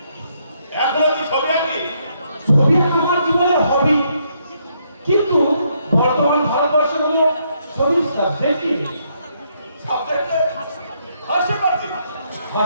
এখনো তুই ছবি আঁকলি? ছবি আঁকা আমার জীবনের হবি, কিন্তু বর্তমান ভারতবর্ষে হলো ছবির সাবজেক্টই সাবজেক্টে হাসতে পারছি।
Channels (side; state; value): both; inverted; correlation -0.74